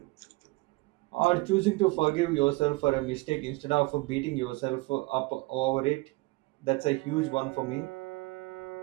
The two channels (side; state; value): left; quieter; 23.3 dB